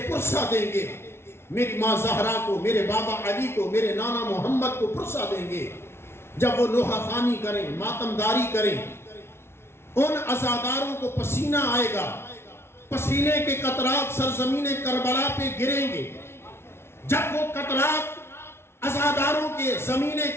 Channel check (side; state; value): right; late; 0.12 ms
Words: پرسہ دیں گے، میری ماں زہرا کو، میرے بابا علی کو، میرے نانا محمد کو پرسہ دیں گے۔ جب وہ نوحہ خوانی کریں، ماتمداری کریں، ان عزاداروں کو پسینہ آئے گا، پسینے کے قطرات سرزمین کربلا پہ گریں گے۔ جب وہ قطرات عزاداروں کے زمین